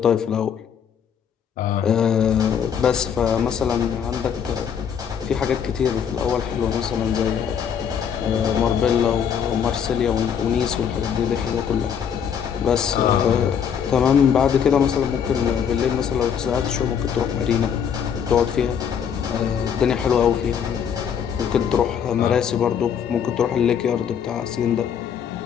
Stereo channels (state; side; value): quieter; right; 7.9 dB